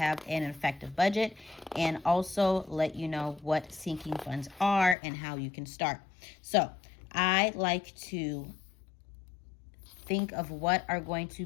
an effective budget, and also let you know what sinking funds are and how you can start. So I like to think of what are going to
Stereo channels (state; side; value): drops out; right; at 5.0 s